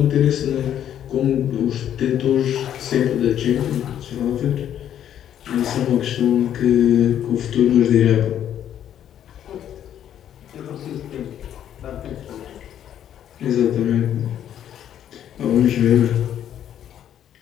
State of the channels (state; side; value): quieter; right; 10.3 dB